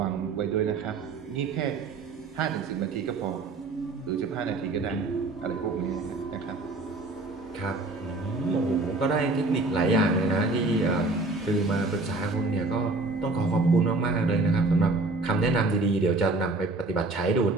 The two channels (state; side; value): quieter; left; 3.2 dB